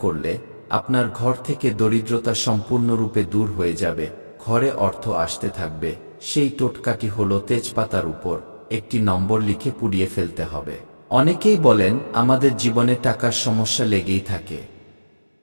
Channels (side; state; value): both; inverted; correlation -1.00